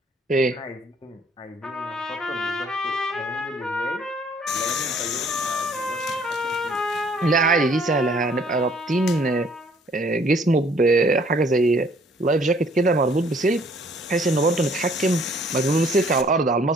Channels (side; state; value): both; normal; correlation 0.60